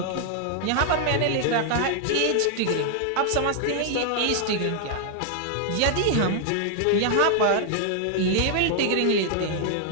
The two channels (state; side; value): different; both; correlation 0.00